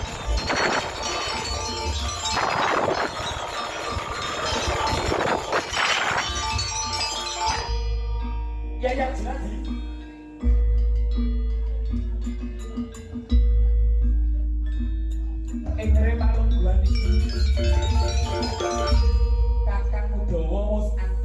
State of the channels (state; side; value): identical; both; correlation 1.00